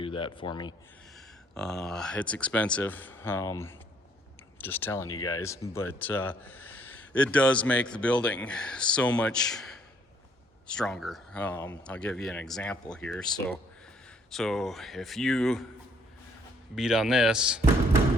that for me. It's expensive, just telling you guys, but it does make the building so much stronger. I'll give you an example here. So if you beat on this,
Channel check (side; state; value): both; normal; correlation 0.65